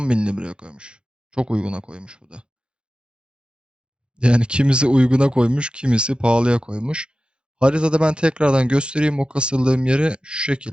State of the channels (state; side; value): late; left; 0.053 ms